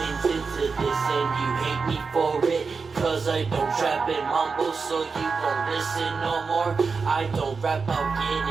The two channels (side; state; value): left; quieter; 4.9 dB